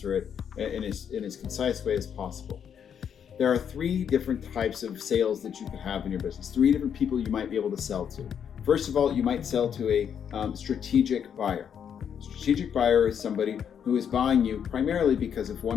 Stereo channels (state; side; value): quieter; right; 8.1 dB